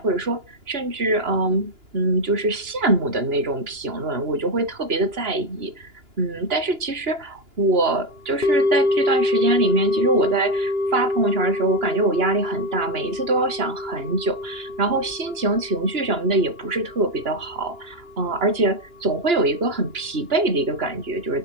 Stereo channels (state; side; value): late; left; 2.9 ms